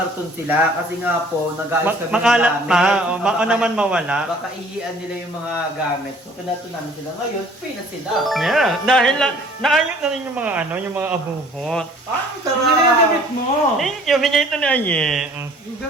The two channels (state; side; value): normal; both; correlation 0.53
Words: sila. Kasi nga po, nag-aayos kami ng Makalat gamit. pa, o baka naman mawala. Baka ihian nila yung mga gamit. So kinato namin sila. Ngayon, pay na sila. Yeah, dahil naayos na rin yung mga ano, yung mga abubot. Ah, Hindi na yung damit mo. Thank you, bigay ito ni Aye. Ang